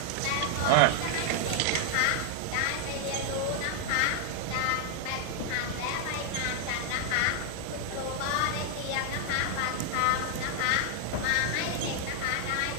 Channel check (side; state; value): both; different; correlation 0.00